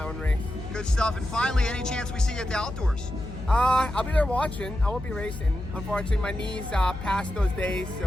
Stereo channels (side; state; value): left; noise; hum, 10 dB below the sound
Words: own race. Good stuff. And finally, any chance we see you at the outdoors? I'll be there watching. I won't be racing. Unfortunately, my knees passed those days,